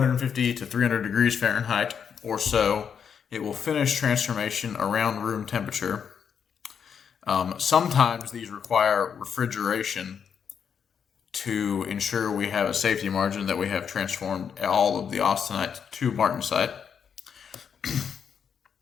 to 300 degrees Fahrenheit or so. It will finish transformation around room temperature. Sometimes these require refrigeration to ensure we have a safety margin that we have transformed all of the austenite to martensite.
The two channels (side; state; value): right; quieter; 7.3 dB